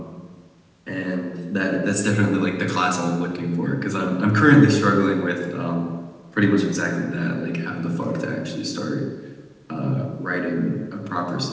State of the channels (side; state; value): both; identical; correlation 1.00